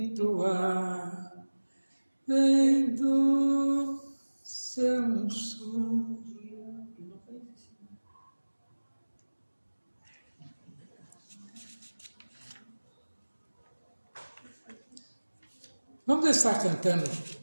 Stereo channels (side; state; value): both; inverted; correlation -1.00